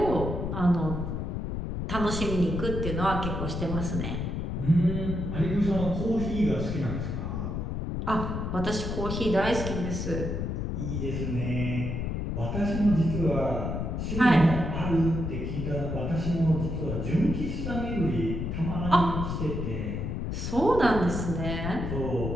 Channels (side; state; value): left; noise; rumble, 3 dB below the sound